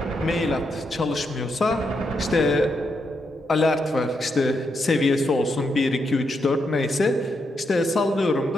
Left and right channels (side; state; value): both; normal; correlation 0.82